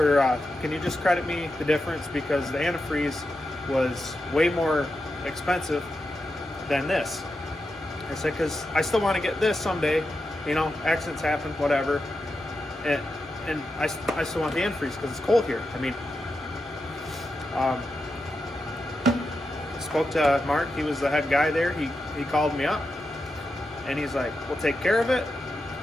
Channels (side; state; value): both; normal; correlation 0.88